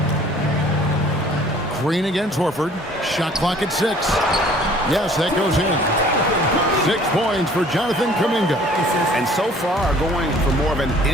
Green against Horford. Shot clock at 6. Yes, that goes in. 6 points for Jonathan Kuminga. And so far, going for more of an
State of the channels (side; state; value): both; normal; correlation 0.54